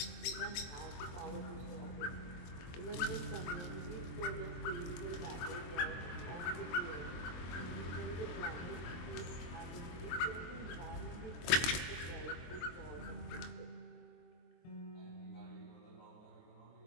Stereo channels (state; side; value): late; right; 23 ms